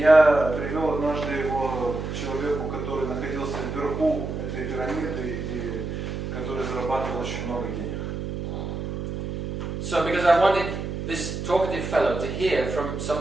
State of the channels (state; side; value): noise; right; hum, 5 dB below the sound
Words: привел однажды его к человеку, который находился вверху этой пирамиды и который зарабатывал очень много денег. So because I wanted this talkative fellow to hear from